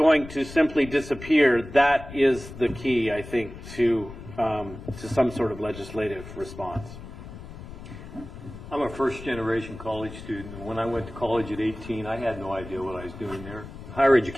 to simply disappear, that is the key, I think, to some sort of legislative response. I'm a first-generation college student. When I went to college at 18, I had no idea what I was doing there. Higher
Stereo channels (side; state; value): left; noise; rumble, 13 dB below the sound